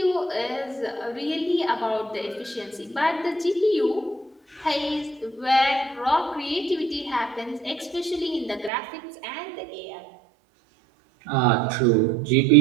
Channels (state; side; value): drops out; left; at 8.7 s